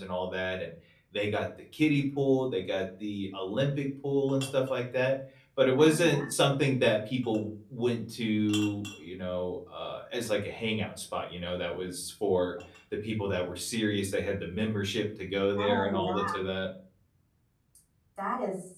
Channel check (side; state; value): both; identical; correlation 1.00